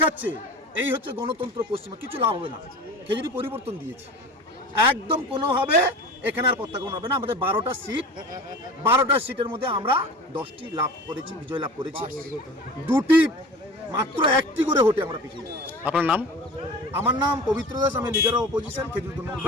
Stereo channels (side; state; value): both; normal; correlation 0.36